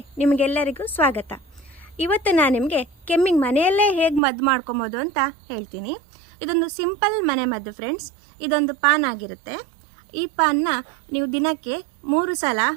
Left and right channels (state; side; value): drops out; left; at 4.2 s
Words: ನಿಮಗೆಲ್ಲರಿಗೂ ಸ್ವಾಗತ. ಇವತ್ತು ನಾನು ನಿಮಗೆ ಕೆಮ್ಮಿಗೆ ಮನೆಯಲ್ಲೇ ಹೇಗೆ ಮದ್ದು ಮಾಡ್ಕೊಬೋದು ಅಂತ ಹೇಳ್ತೀನಿ. ಇದೊಂದು ಸಿಂಪಲ್ ಮನೆ ಮದ್ದು ಫ್ರೆಂಡ್ಸ್. ಇದೊಂದು ಪಾನ್ ಆಗಿರುತ್ತೆ. ಈ ಪಾನ್ನ ನೀವು ದಿನಕ್ಕೆ 3 ಸಲ